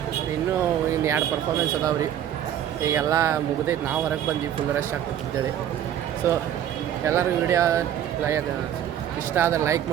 ಇನ್ನೂ ಇನ್ನು 2 ಪರ್ಫಾರ್ಮೆನ್ಸ್ ಅದಾವ್ರಿ. ಈಗೆಲ್ಲ ಮುಗ್ದೈತೆ. ನಾವು ಹೊರಗೆ ಬಂದ್ವಿ, ಫುಲ್ ರಶ್ ಆಗ್ತಿದ್ದೇವೆ. ಸೊ ಎಲ್ಲರಿಗೂ ವಿಡಿಯೋ ಇಷ್ಟ ಆದರೆ ಲೈಕ್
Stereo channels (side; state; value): left; quieter; 10.5 dB